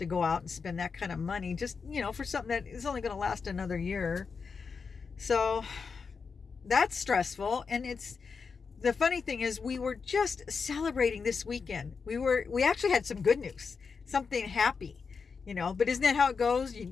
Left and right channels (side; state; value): right; quieter; 5.3 dB